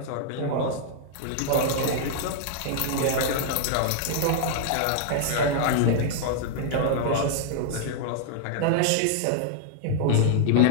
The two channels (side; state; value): both; different; correlation -0.01